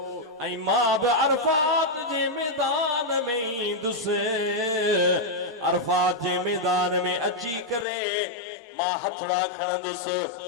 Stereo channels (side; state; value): right; drops out; at 7.9 s